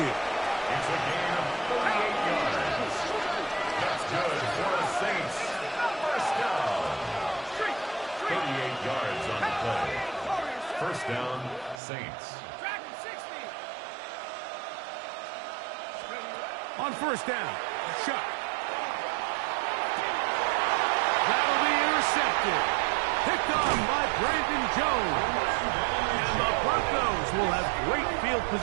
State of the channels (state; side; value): drops out; left; at 11.8 s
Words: It's a gain of 38 yards. That's good for the Saints. First down. 38 yards on the play. First down, Saints. On first down, Shuck. That'll be intercepted. Picked on by Brandon Jones. And the Broncos will have great field